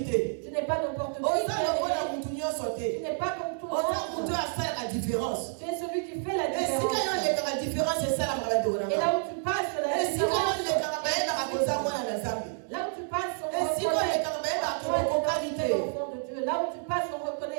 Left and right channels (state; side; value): silent; left; digital silence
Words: Dieu. Tu n'es pas n'importe qui. Tu n'es pas comme tout le monde. Tu es celui qui fait la différence. Et là où tu passes, la différence. Là où tu passes, on reconnaît enfant de Dieu. Là où tu passes, on